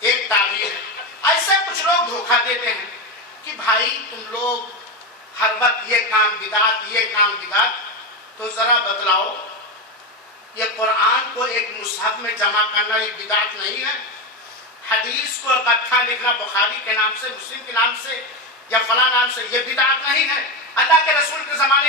تعبیر ہے. ایسے کچھ لوگ دھوکہ دیتے ہیں کہ بھائی تم لوگ ہر وقت یہ کام بدعت تو ذرا بتلاؤ یہ قرآن کو ایک مصحف میں جمع کرنا یہ بدعت نہیں ہے؟ حدیث کو اکٹھا لکھنا بخاری کے نام سے مسلم کے نام سے یا فلاں نام سے یہ بدعت نہیں ہے؟ اللہ کے رسول کے زمانے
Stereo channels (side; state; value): both; normal; correlation 0.14